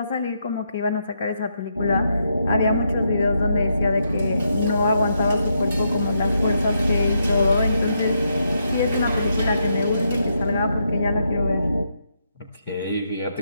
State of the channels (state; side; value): inverted; both; correlation -0.80